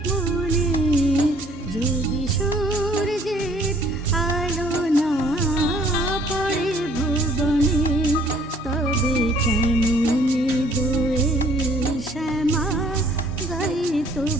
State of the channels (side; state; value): both; normal; correlation 0.59